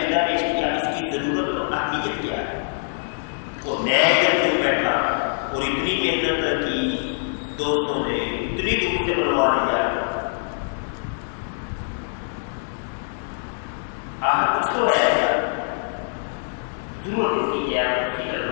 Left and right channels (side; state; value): right; silent; digital silence